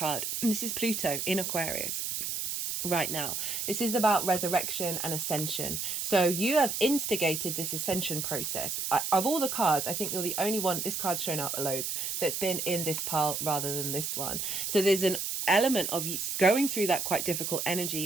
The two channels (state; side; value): noise; right; hiss, 2 dB below the sound